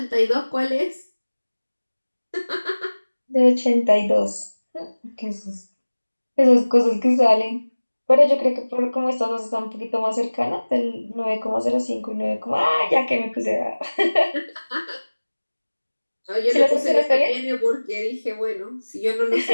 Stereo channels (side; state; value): both; inverted; correlation -1.00